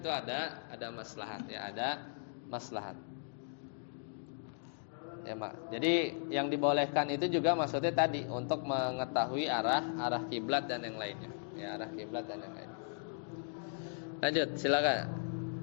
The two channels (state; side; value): silent; right; digital silence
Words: ada maslahat ya, ada maslahat Ya, Mak. Jadi yang dibolehkan itu juga maksudnya tadi untuk mengetahui arah kiblat dan yang lainnya. Ya, arah kiblat dan yang lainnya. Lanjut, silakan.